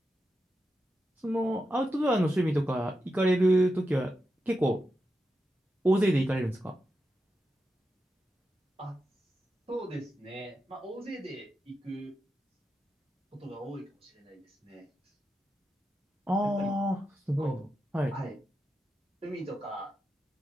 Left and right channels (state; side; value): normal; both; correlation 0.88